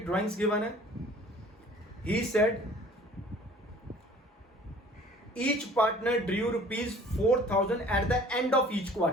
ड्राइंग्स गिवन है। He said each partner Drew ₹4000 eight the end of each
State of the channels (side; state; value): both; normal; correlation 0.50